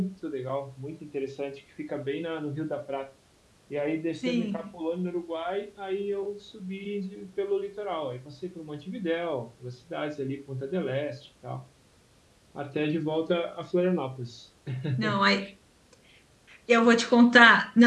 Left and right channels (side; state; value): both; identical; correlation 1.00